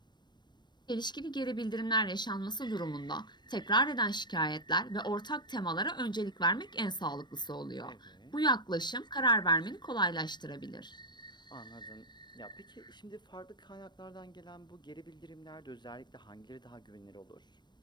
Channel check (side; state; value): right; late; 0.22 ms